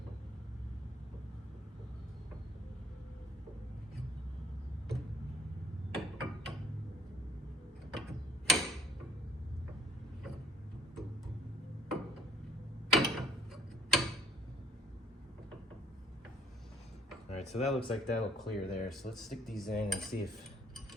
All right, so that looks like that'll clear there. So let's stick these in and see if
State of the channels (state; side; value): normal; both; correlation 0.62